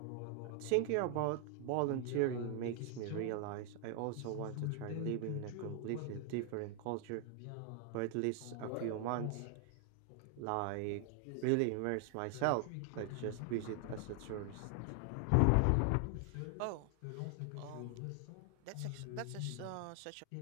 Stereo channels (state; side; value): different; both; correlation 0.00